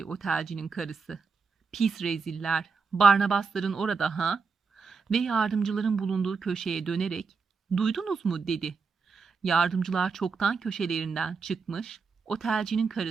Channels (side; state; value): left; quieter; 5.0 dB